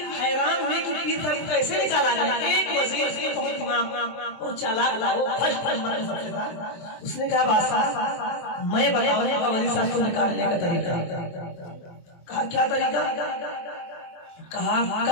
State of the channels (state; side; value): late; right; 23 ms